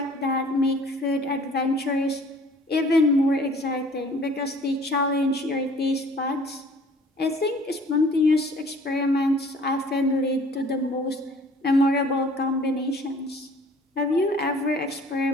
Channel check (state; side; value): normal; both; correlation 0.52